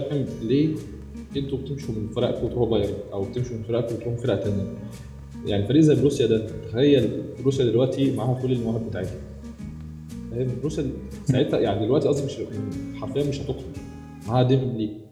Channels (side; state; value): both; identical; correlation 1.00